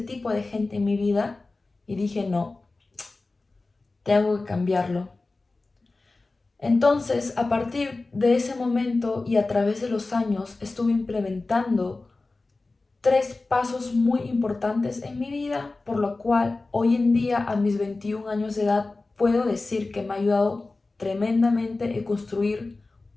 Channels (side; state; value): right; quieter; 3.4 dB